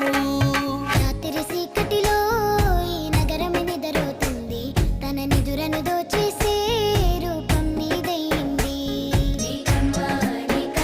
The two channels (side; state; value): both; identical; correlation 1.00